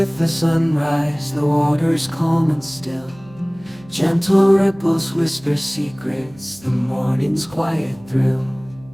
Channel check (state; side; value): noise; right; hum, 24 dB below the sound